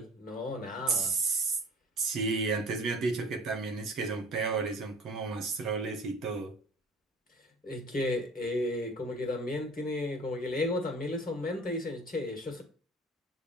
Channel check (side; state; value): both; normal; correlation 0.46